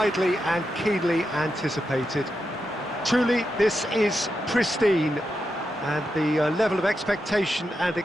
and keenly anticipated. Truly, this is pristine, and the level of expectation and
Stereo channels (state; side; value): normal; both; correlation 0.87